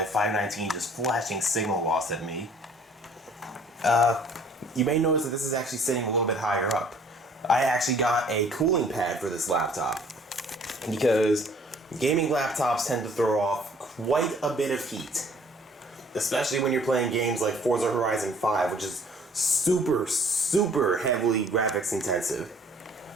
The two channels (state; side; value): normal; both; correlation 0.56